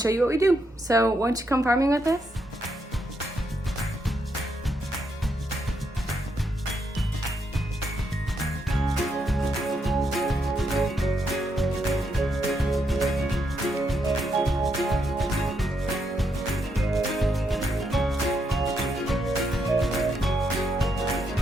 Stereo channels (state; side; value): normal; both; correlation 0.79